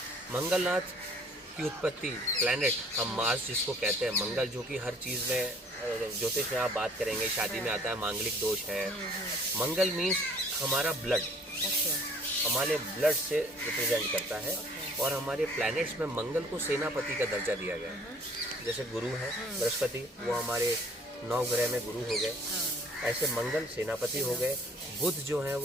मंगलनाथ की उत्पत्ति, प्लैनेट, हम मार्स जिसको कहते हैं, मंगल, जो कि हर चीज़ में, ज्योतिष में आप बात करेंगे, शादी में आता है, मांगलिक दोष है। मंगल मीन्स हमारा ब्लड, हमारे ब्लड से रिप्रेजेंट करता है। और हमारे प्लैनेट्स में मंगल को सेनापति का दर्जा दिया गया है। जैसे गुरु है बृहस्पति, वो हमारे 9 ग्रह में गुरु हो गए, ऐसे मंगल सेनापति हो गए। बुध जो है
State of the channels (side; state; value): both; normal; correlation 0.56